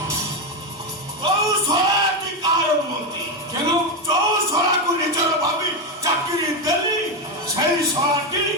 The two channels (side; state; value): both; normal; correlation 0.09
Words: কৌশলাটি কারণ মতি কেন কৌশলাକୁ ନିଜର ଭାବି ଚାକିରି ଦେଲି সেই ଶଳାଟି